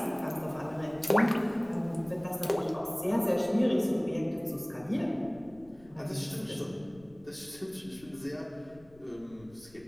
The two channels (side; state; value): left; noise; rumble, 24 dB below the sound